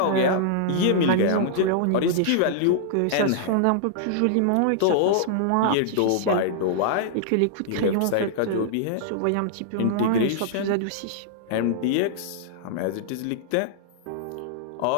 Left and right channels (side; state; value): both; different; correlation -0.01